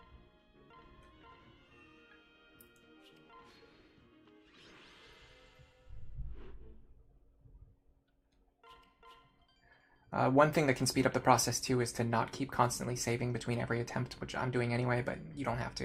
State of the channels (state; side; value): identical; both; correlation 1.00